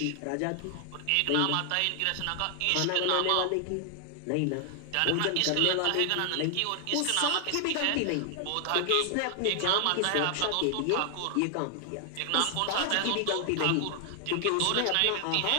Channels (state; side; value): different; both; correlation 0.00